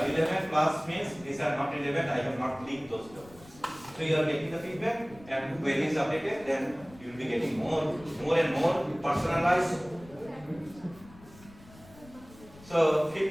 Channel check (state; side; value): noise; left; rumble, 22 dB below the sound